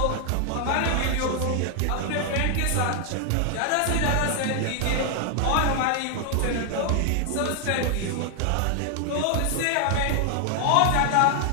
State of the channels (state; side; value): different; both; correlation 0.00